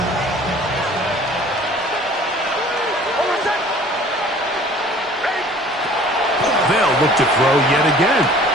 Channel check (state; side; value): normal; both; correlation 0.50